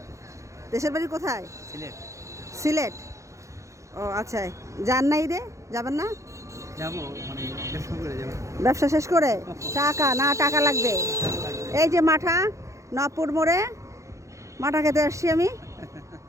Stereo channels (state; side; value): late; left; 0.15 ms